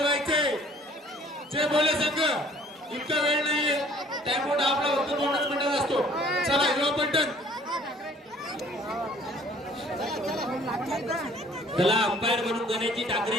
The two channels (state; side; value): normal; both; correlation 0.55